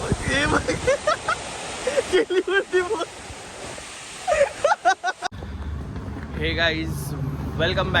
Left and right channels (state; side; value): identical; both; correlation 1.00